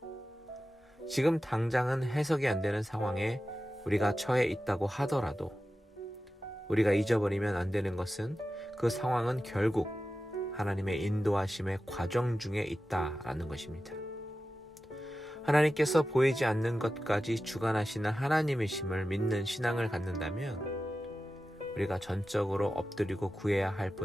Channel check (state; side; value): normal; both; correlation 0.93